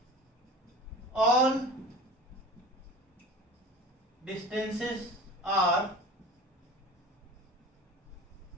all distances are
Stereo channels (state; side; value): normal; both; correlation 0.38